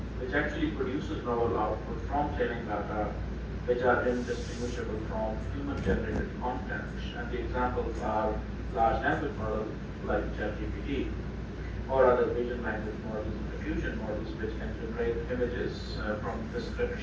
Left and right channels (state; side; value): identical; both; correlation 1.00